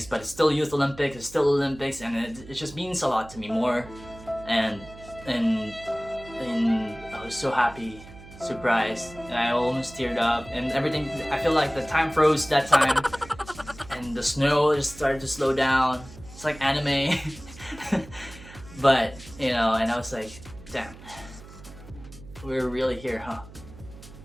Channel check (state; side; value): noise; right; hum, 18 dB below the sound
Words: but it's still Youth Olympics. It's still Olympics, and it just means a lot to me more. And I was so happy, surprised, and I almost teared up, and everything. I feel like the time froze that time, and the snow just started to slow down. It's like anime. But and I was like, damn, we're really here, huh?